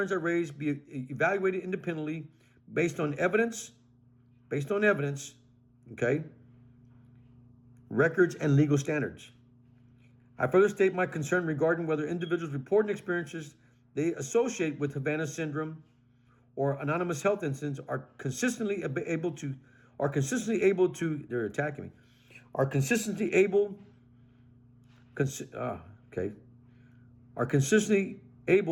I raised be evaluated independently based on evidence, okay, records and legal standards. I further state my concern regarding whether individuals reporting experiences they associate with Havana syndrome or anonymous health incidents are consistently able to, they're attacking me, are consistently able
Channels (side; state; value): both; identical; correlation 1.00